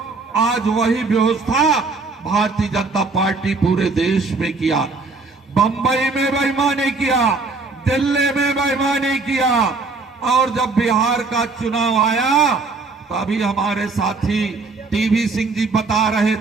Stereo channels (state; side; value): quieter; left; 4.0 dB